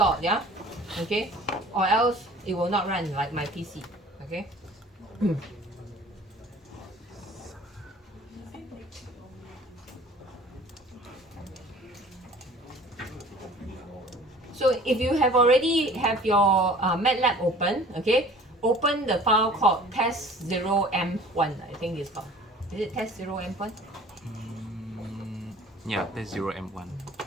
yeah, okay, or else it will not run like my PC, okay. So if you have already have your MATLAB open, okay, open the file called test0m1. I think it's called. Is it test0m1? Yeah, that's 0M1.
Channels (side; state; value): both; normal; correlation 0.48